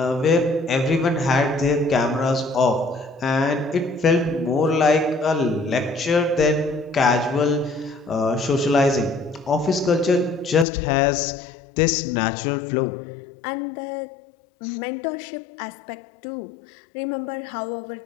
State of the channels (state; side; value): drops out; right; at 10.7 s